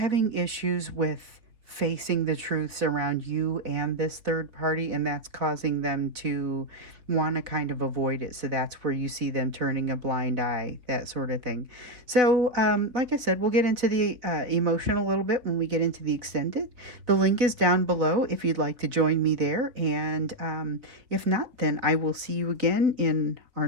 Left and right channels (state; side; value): late; left; 4.1 ms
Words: issues with facing the truths around you and this third party, and that's causing them to want to kind of avoid it. So that's where you see them turning a blind eye, that sort of thing. So, like I said, we'll get into the emotion a little bit when we get into the extended. The link is down below if you'd like to join me there. And if not, then I will see you again in our